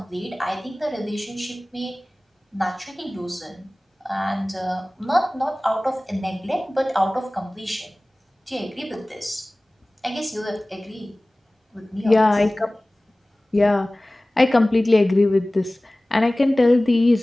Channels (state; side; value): normal; both; correlation 0.98